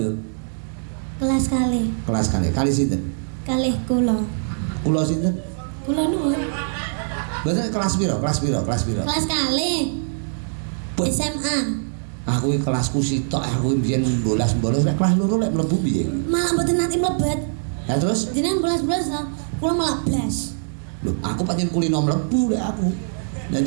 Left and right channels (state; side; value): silent; left; digital silence